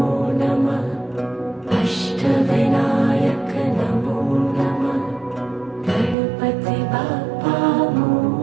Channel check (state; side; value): drops out; left; at 6.2 s